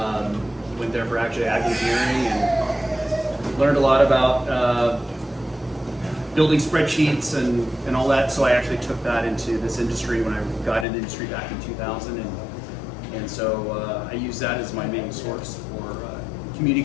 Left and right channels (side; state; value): right; drops out; at 10.9 s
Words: Went there for actually ag engineering and learned a lot about building spreadsheets and all that. So I actually took that into this industry when I got into the industry back in 2000. And so I use that as my main source for